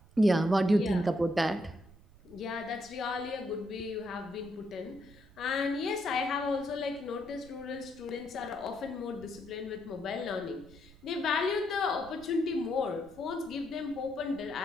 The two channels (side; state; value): right; noise; rumble, 22 dB below the sound